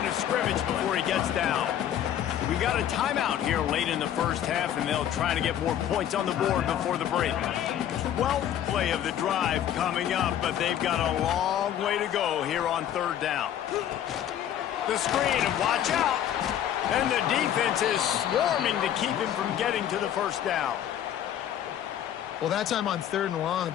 of scrimmage before he gets down. We got a timeout here late in the first half, and they'll try to get more points on the board before the break. 12th play of the drive coming up, but they've got a long way to go here on third down. The screen, and watch out. And the defense is swarming to keep him from getting to the first down. Well, that time on third and long,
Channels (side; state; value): right; quieter; 10.6 dB